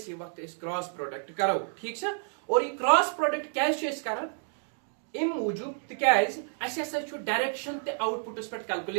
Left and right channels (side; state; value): left; silent; digital silence